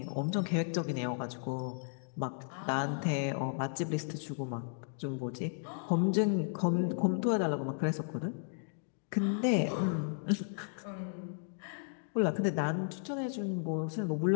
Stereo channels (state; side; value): silent; right; digital silence